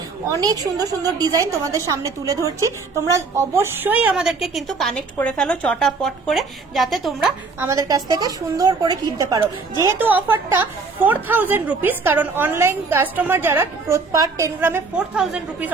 অনেক সুন্দর সুন্দর ডিজাইন তোমাদের সামনে তুলে ধরছি। তোমরা অবশ্যই আমাদেরকে কিন্তু কানেক্ট করে ফেলো চটাপট করে, যাতে তোমরা আমাদের কাছ থেকে সুন্দর করে কিনতে পারো। যেহেতু অফারটা 4000 রুপিস, কারণ অনলাইন কাস্টমার যারা পার 10 গ্রামে 4000 রুপিস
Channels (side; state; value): left; quieter; 4.3 dB